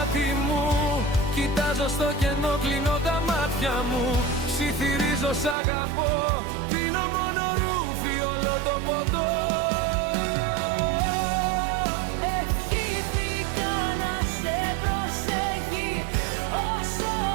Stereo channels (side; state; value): left; drops out; at 5.6 s